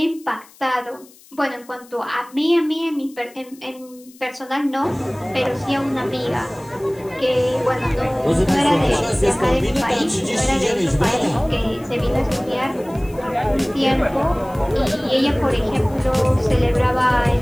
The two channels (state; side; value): noise; left; hiss, 25 dB below the sound